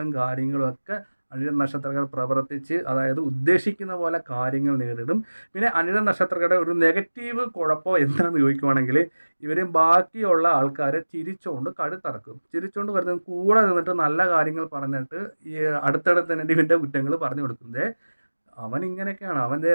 കാര്യങ്ങളും ഒക്കെ അനിഴം നക്ഷത്രക്കാർ പ്രവർത്തിച്ച്, അതായത് ഉദ്ദേശിക്കുന്ന പോലെ കാര്യങ്ങൾ നേരിടും. പിന്നെ അനിഴം നക്ഷത്രക്കാരുടെ ഒരു നെഗറ്റീവ് കുഴപ്പം എന്താണെന്ന് ചോദിക്കുവാണെങ്കിൽ ഇവർ ബാക്കിയുള്ള ആൾക്കാരെ ചിരിച്ചുകൊണ്ട് കഴുത്തറക്കും. ചിരിച്ചുകൊണ്ട് വരുന്നത് കൂടെ നിന്നിട്ട് നല്ല കാര്യങ്ങൾ പറഞ്ഞിട്ട് ഈ അടുത്തടുത്ത് തന്നെ ഇവൻ്റെ കുറ്റങ്ങൾ പറഞ്ഞു കൊടുക്കുന്നത്. അവൻ ഇങ്ങനെയൊക്കെയാണ്,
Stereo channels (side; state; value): both; inverted; correlation -1.00